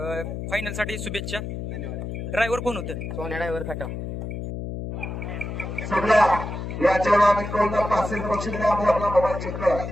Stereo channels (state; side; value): noise; left; hum, 6 dB below the sound